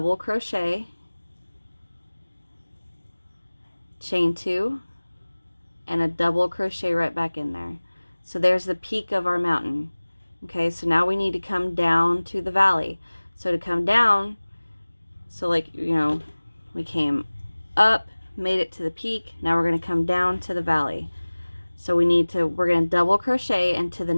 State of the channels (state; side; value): inverted; both; correlation -1.00